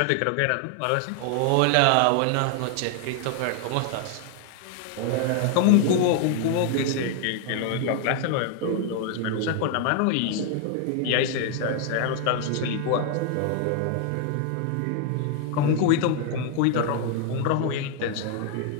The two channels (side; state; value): both; different; correlation 0.00